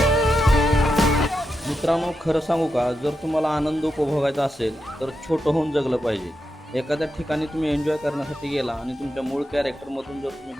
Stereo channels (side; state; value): both; normal; correlation 0.87